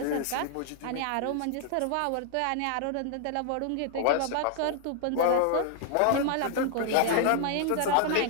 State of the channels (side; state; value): both; different; correlation 0.00